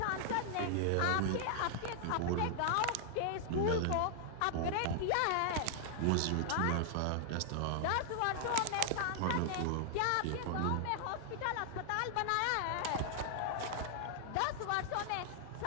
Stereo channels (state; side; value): different; both; correlation -0.01